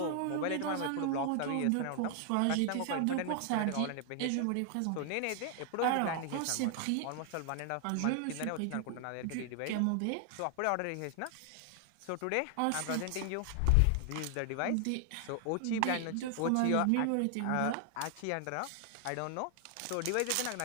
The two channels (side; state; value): both; different; correlation 0.00